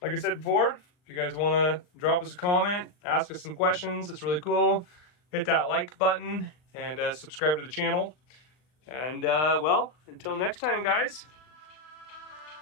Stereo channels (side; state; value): right; late; 39 ms